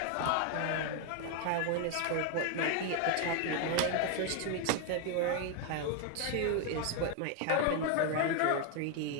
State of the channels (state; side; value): different; both; correlation 0.01